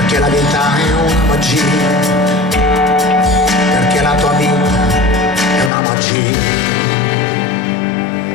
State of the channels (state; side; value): drops out; right; at 5.7 s